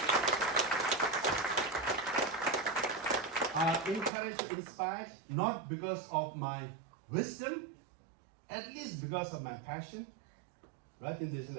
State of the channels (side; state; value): left; drops out; at 4.1 s